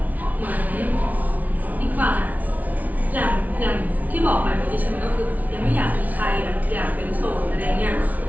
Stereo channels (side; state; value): left; late; 0.074 ms